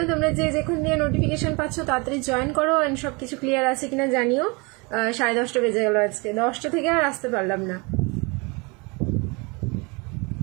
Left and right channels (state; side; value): quieter; left; 28.7 dB